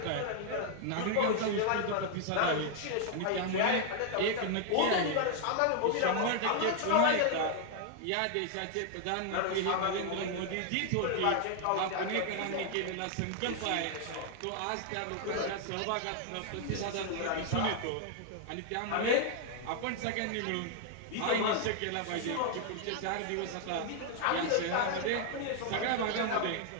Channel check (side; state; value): both; different; correlation 0.00